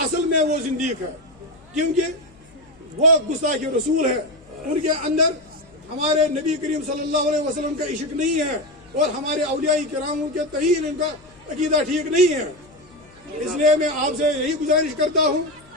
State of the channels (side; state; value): left; noise; hum, 27 dB below the sound